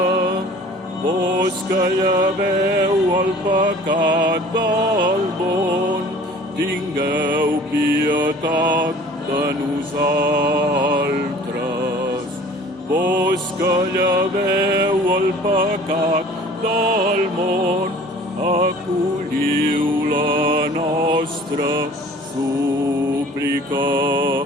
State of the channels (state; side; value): normal; both; correlation 0.48